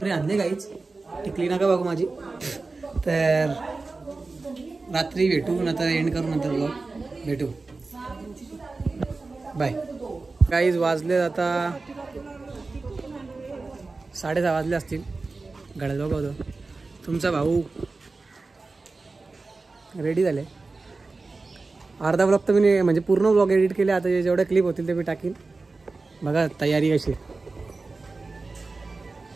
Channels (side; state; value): left; quieter; 3.7 dB